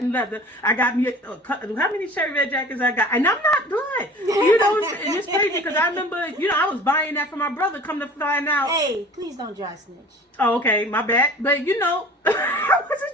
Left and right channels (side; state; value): both; normal; correlation 0.43